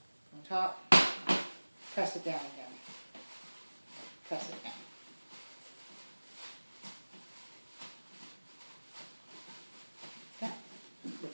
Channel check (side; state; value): both; inverted; correlation -1.00